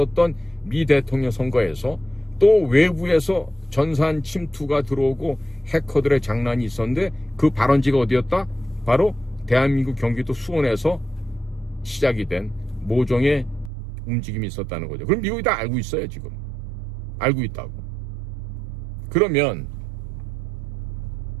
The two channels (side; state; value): left; drops out; at 13.7 s